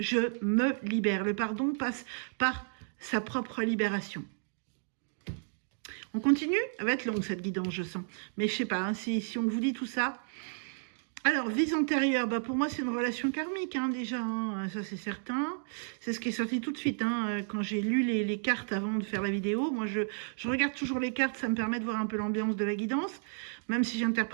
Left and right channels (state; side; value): silent; left; digital silence